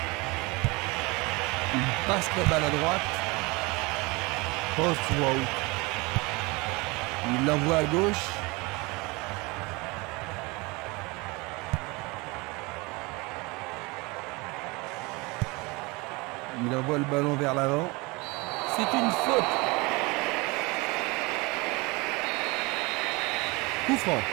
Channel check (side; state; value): left; quieter; 25.6 dB